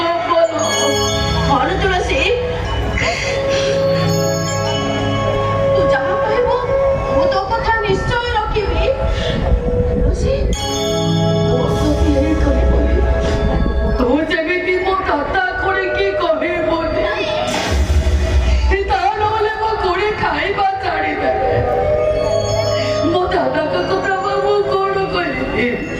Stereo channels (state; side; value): identical; both; correlation 1.00